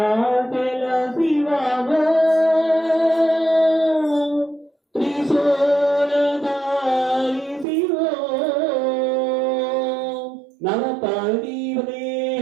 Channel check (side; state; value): left; drops out; at 7.7 s